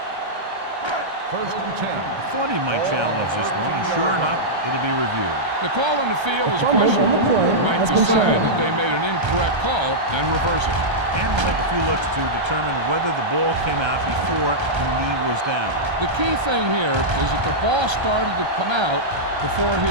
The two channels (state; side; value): late; left; 1.3 ms